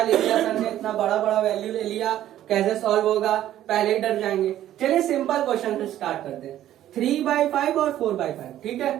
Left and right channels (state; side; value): quieter; left; 12.5 dB